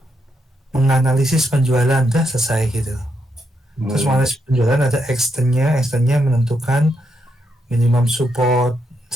menganalisis penjualan, dah selesai gitu. Terus menganalisis penjualan ada extendnya menentukan minimum support.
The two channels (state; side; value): normal; both; correlation 0.80